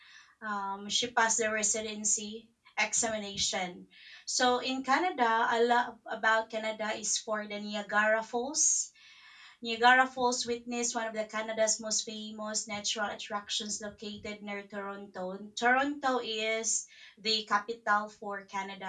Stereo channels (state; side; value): identical; both; correlation 1.00